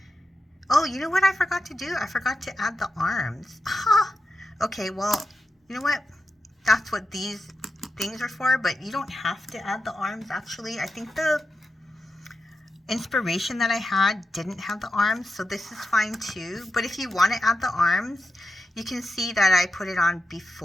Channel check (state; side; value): normal; both; correlation 0.89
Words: Oh, you know what I forgot to do? I forgot to add the arms. Okay, well, you know what? That's what these things are for, but you don't have to add the arms, actually. I think the inspiration that I had didn't have the arms, so this is fine too. But if you want to add the arms, you can see that I put it on